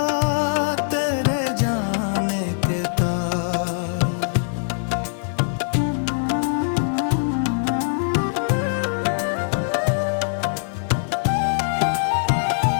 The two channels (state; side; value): silent; right; digital silence